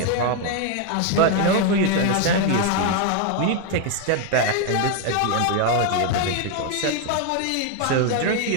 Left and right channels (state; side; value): different; both; correlation 0.01